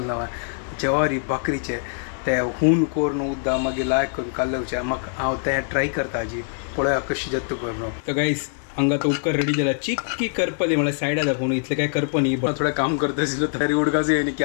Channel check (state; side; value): silent; right; digital silence